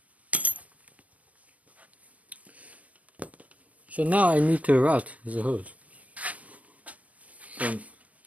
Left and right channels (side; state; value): left; late; 0.068 ms